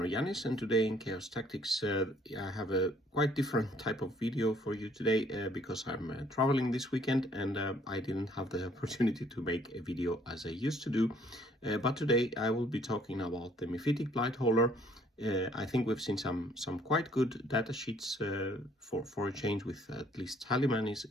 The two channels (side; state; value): both; normal; correlation 0.62